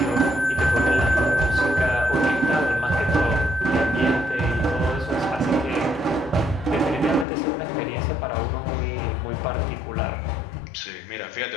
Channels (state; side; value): drops out; right; at 7.2 s